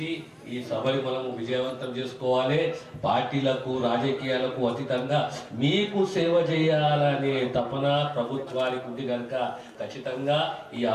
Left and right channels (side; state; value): both; identical; correlation 1.00